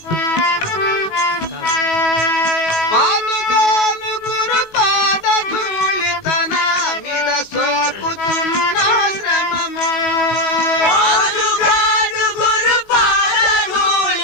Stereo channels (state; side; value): late; right; 18 ms